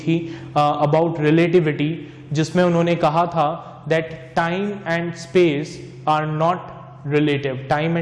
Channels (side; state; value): both; identical; correlation 1.00